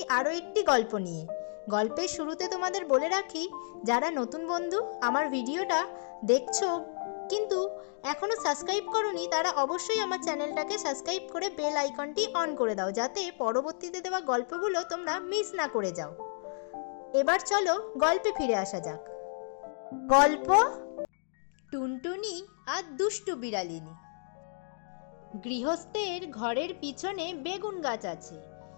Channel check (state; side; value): silent; right; digital silence